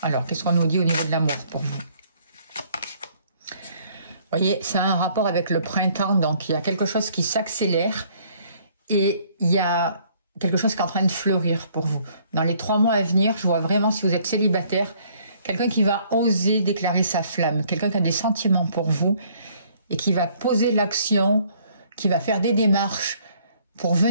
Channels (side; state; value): both; inverted; correlation -0.62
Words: Alors, qu'est-ce qu'on nous dit au niveau de l'amour pour vous? Vous voyez, ça a un rapport avec le printemps, donc il y a quelque chose qui s'accélère et il y a quelque chose qui est en train de fleurir pour vous. Dans les 3 mois à venir, je vois vraiment, si vous êtes célibataire, quelqu'un qui va oser déclarer sa flamme, quelqu'un qui a des sentiments pour vous et qui va poser l'action, qui va faire des démarches pour